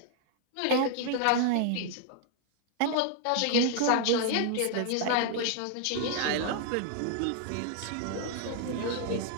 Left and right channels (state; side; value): different; both; correlation 0.00